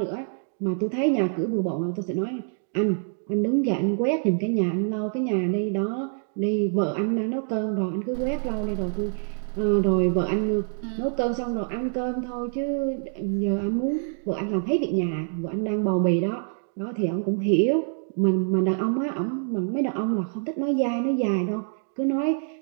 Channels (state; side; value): silent; left; 61 dB below the other